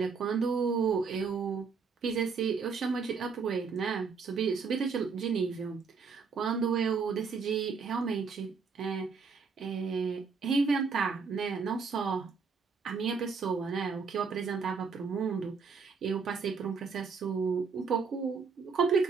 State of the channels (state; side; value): quieter; left; 5.3 dB